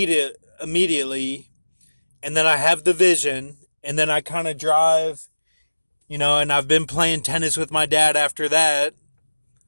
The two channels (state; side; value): inverted; both; correlation -1.00